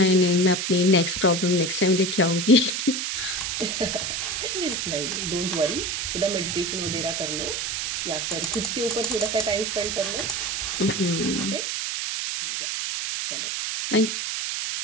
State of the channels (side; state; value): right; noise; hiss, 2 dB below the sound